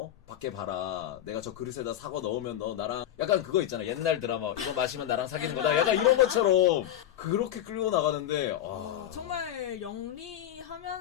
밖에 봐라 내가 저 그릇에다 사과 넣으면 너 나랑 약간 그거 있잖아 옛날 드라마 이거 마시면 나랑 사귀는 거다 약간 이런 것처럼 그렇게 끌고 나가는데 정말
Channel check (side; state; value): right; quieter; 11.6 dB